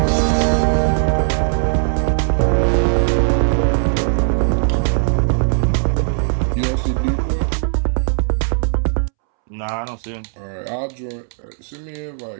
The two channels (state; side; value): silent; left; 67 dB below the other